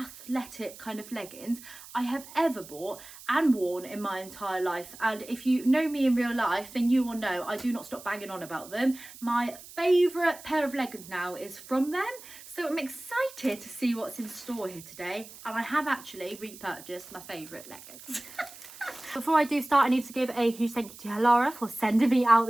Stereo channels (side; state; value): right; noise; hiss, 17 dB below the sound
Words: kind of leggings I have ever bought and worn in my entire life. And if you know me in real life, then you will know I do not stop banging on about them. My favourite pair of leggings now is from them, so I'm excited to see what's in store here today. And I have actually repurchased my favourite leggings. Before I do start, I need to give a huge thank you to Halara for sending me out